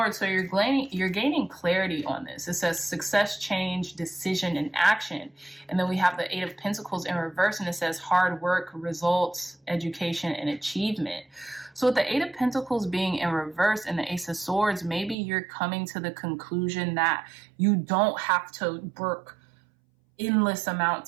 So you're gaining clarity on this. It says success, change, decision, and action. And then we have the 8 of Pentacles in reverse, and it says hard work, results, education, and achievement. So with the 8 of Pentacles being in reverse and the Ace of Swords, maybe you're coming to the conclusion that you don't have to work endless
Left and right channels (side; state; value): left; drops out; at 15.2 s